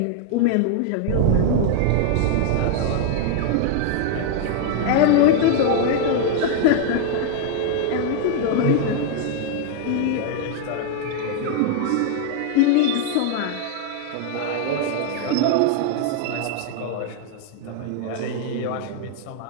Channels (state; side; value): different; both; correlation 0.00